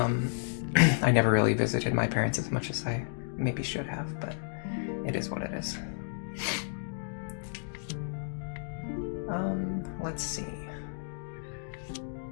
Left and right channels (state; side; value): silent; right; digital silence